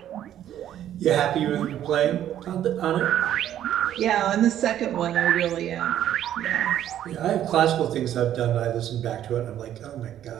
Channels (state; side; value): quieter; left; 11.2 dB